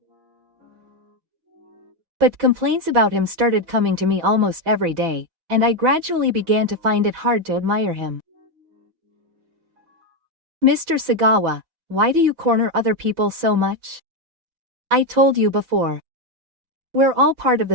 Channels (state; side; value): late; left; 6.1 ms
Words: But complaints about him started coming to me almost every day, and I gradually began to find it hard to admire him. "Mr. Sagawa, why do you corner other people so much? I told you before. We're all part of